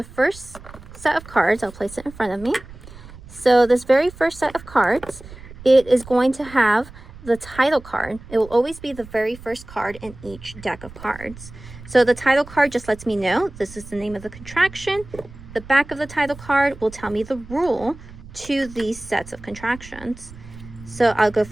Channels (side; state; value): right; noise; rumble, 17 dB below the sound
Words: first set of cards. I'll place it in front of me. So this very first set of cards, it is going to have the title card. It will always be the very first card in each deck of cards. So the title card just lets me know this is the name of the contraction. The back of the title card will tell me the rule to these sets of contractions. So I'll go